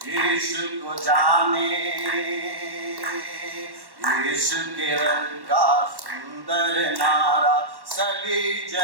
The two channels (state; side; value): late; left; 1.1 ms